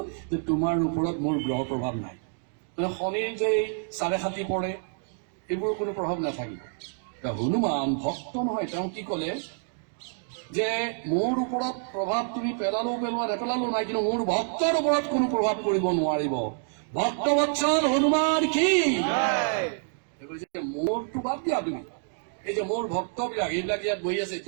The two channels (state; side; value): silent; left; 60 dB below the other